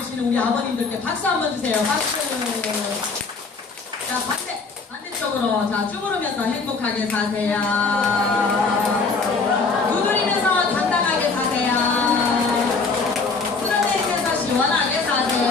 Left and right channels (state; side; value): quieter; right; 4.4 dB